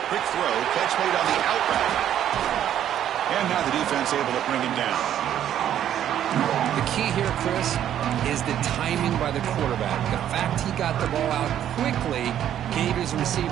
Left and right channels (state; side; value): quieter; left; 10.7 dB